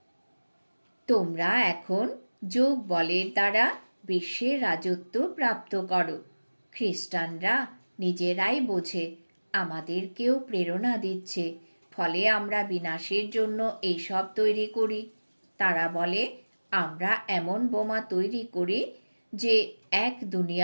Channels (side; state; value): both; inverted; correlation -1.00